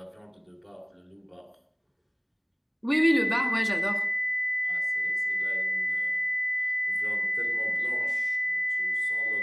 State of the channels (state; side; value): identical; both; correlation 1.00